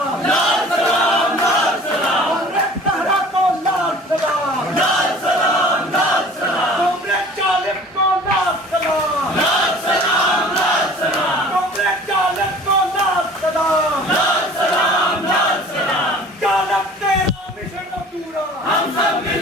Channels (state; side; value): normal; both; correlation 0.46